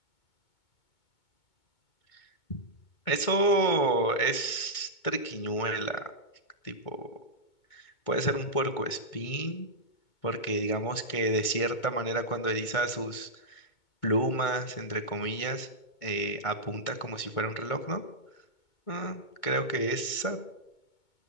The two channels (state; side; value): late; right; 2.2 ms